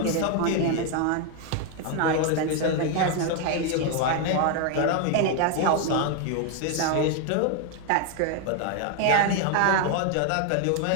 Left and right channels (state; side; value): different; both; correlation 0.01